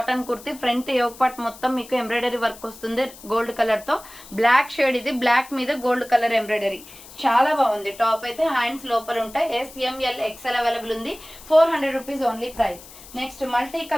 kurti. Front yoke part మొత్తం మీకు ఎంబ్రాయిడరీ వర్క్ వస్తుంది గోల్డ్ కలర్తో. బ్లాక్ షేడ్ ఇది. బ్లాక్ మీద గోల్డ్ కలర్ ఎంబ్రాయిడరీ. చాలా బాగుంది. టాప్ అయితే హ్యాండ్స్ లోపల ఉంటాయి. ఎంఎల్ ఎక్స్ఎల్ అవైలబుల్ ఉంది. 400 rupees only price. Next multi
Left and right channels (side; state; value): left; noise; hiss, 19 dB below the sound